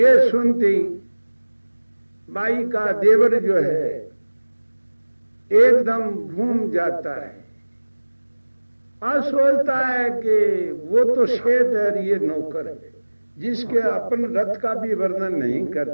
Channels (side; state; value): both; inverted; correlation -1.00